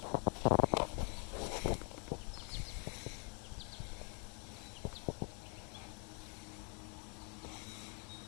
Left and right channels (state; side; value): quieter; right; 36.8 dB